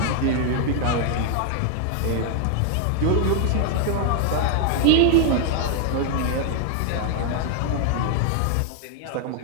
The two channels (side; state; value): both; different; correlation 0.00